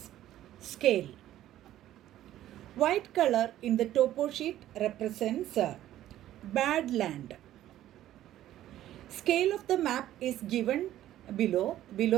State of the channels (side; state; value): left; quieter; 13.1 dB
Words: scale. White color in the topo sheet represents bad land. Scale of the map is given below.